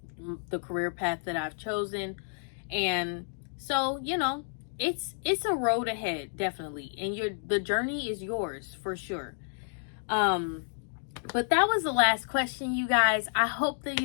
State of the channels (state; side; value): silent; right; digital silence